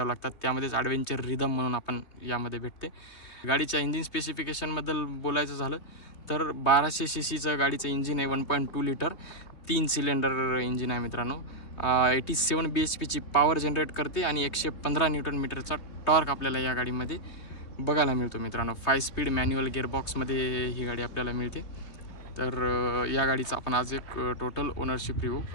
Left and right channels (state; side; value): late; right; 3.2 ms